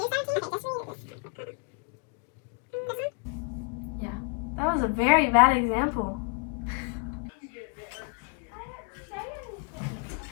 Yeah. That was a very bad example.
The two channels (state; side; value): quieter; right; 38.0 dB